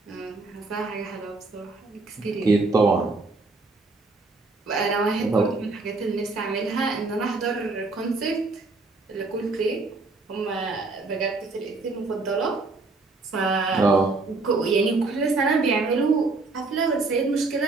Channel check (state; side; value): quieter; left; 3.6 dB